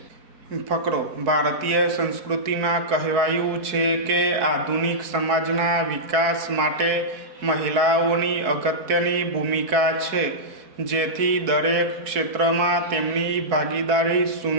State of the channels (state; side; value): late; left; 4.6 ms